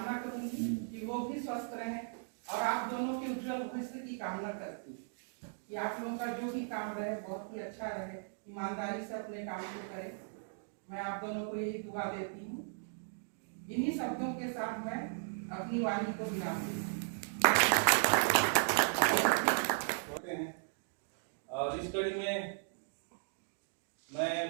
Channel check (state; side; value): silent; left; digital silence